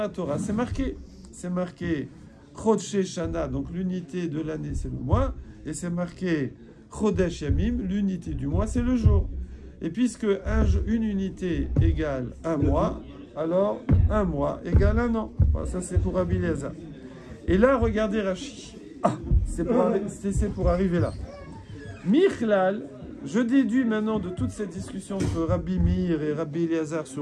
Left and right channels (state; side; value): identical; both; correlation 1.00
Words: Torah, c'est marqué. C'est marqué Chodshé Shana, donc l'unité de l'année, c'est le mois. Et c'est marqué Chodesh Yamim, l'unité du mois, c'est le jour. Et puisque une unité égale un mois, alors un mois égale un an. Voilà, ça c'est pour Rabbi Eliezer. Et là, regardez Rashi. Ah, c'est pour arriver là. Michlal, je déduis maintenant de toute cette discussion entre Rabbi Meir et Rabbi Eliezer